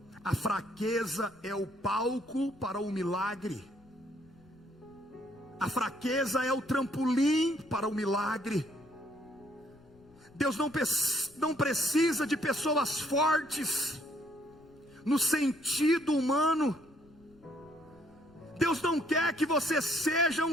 a fraqueza é o palco para o milagre. A fraqueza é o trampolim para o milagre. Deus não precisa de pessoas fortes no sentido humano. Deus não quer que você seja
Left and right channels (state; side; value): noise; left; rumble, 28 dB below the sound